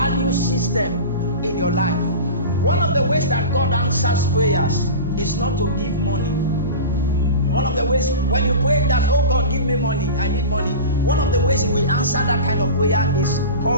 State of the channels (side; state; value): both; inverted; correlation -0.31